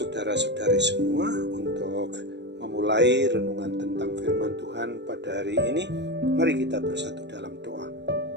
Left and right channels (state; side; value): late; left; 0.51 ms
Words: semua. Untuk memulai renungan tentang firman Tuhan pada hari ini, mari kita bersatu dalam doa.